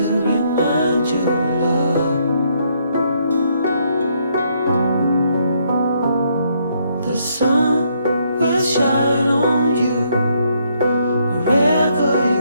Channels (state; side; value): inverted; both; correlation -0.72